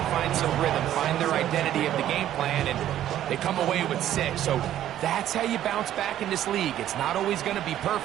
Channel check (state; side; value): quieter; left; 12.0 dB